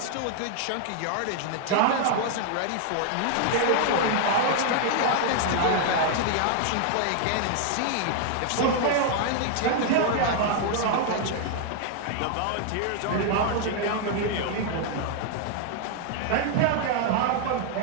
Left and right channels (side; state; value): both; different; correlation 0.00